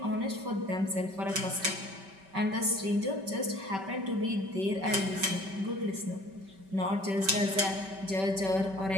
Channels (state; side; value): late; left; 5.2 ms